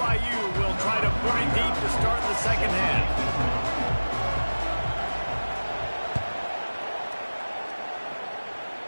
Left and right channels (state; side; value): inverted; both; correlation -1.00